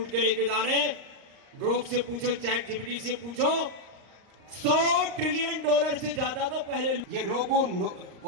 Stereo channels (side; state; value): left; late; 38 ms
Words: के लेके जा रहे हैं। ग्रोक से पूछो, चैट जीपीटी से पूछो, $100 ट्रिलियन से ज्यादा तो पहले ये रोगों